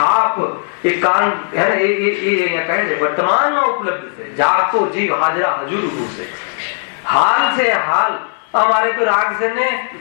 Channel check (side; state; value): right; silent; digital silence